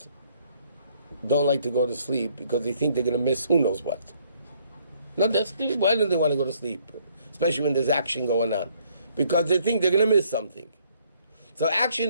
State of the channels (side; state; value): both; inverted; correlation -0.66